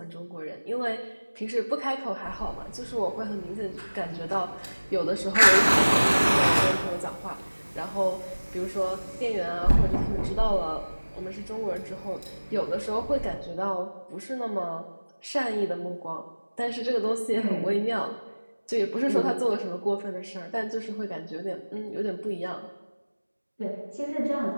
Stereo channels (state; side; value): inverted; both; correlation -1.00